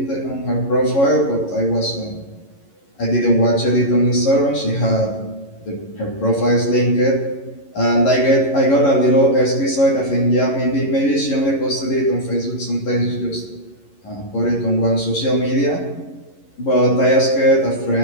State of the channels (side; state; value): right; late; 11 ms